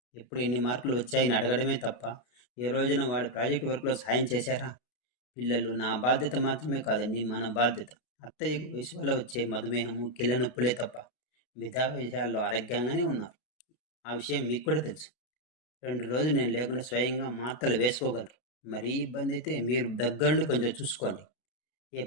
ఎప్పుడు ఎన్ని మార్కులు వచ్చాయని అడగడమే తప్ప ఏ రోజున వాడి ప్రాజెక్ట్ వర్క్లో సాయం చేశారా? పిల్లలు నా బాధ్యత మాత్రమే కాదండి, మన బాధ్యత. అత్తయ్యకు వయసు వల్ల వచ్చే మధుమేహము, కీళ్ళ నొప్పులే తప్ప మిగతా విషయాల్లో ఆరోగ్యంగానే ఉన్నారు. ఆ విషయం మీకు కూడా తెలుసు. 2 రోజులు నేను లేకుండా స్వయంగా మాత్రలు వేసుకోగలరు. మరీ ఇబ్బంది అయితే మీరు దగ్గరుండి కొంచెం చూసుకోండి.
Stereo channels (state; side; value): late; right; 32 ms